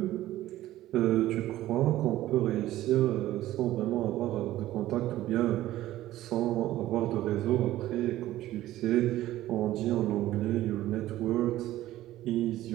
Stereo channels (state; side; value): quieter; left; 14.8 dB